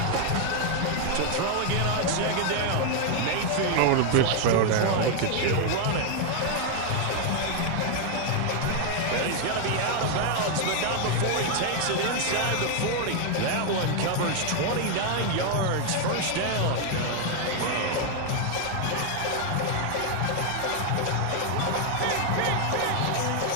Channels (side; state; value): both; different; correlation 0.00